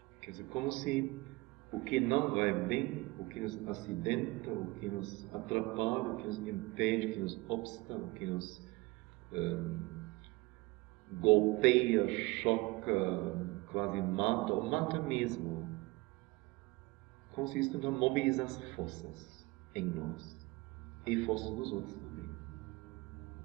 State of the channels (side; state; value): left; quieter; 23.2 dB